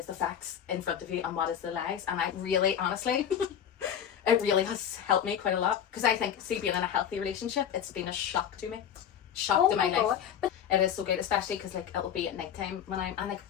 the facts in front of you and what is the lies. And I really, honestly, it really has helped me quite a lot because I think, see, being in a healthy relationship, it's been a shock to me, to my life. But it is so good, especially because like it'll be at night time when I'm, and like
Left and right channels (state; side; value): quieter; right; 9.1 dB